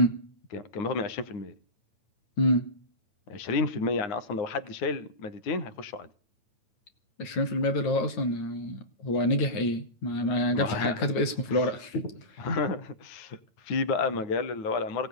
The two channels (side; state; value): right; late; 9.3 ms